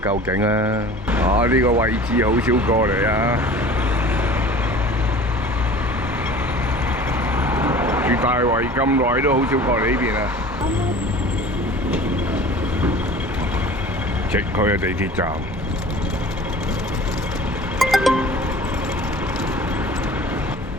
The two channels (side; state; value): both; normal; correlation 0.43